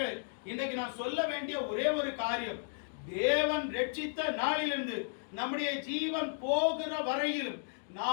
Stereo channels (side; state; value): right; silent; digital silence